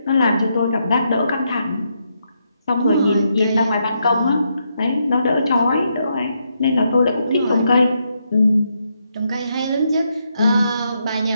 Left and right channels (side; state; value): both; inverted; correlation -0.80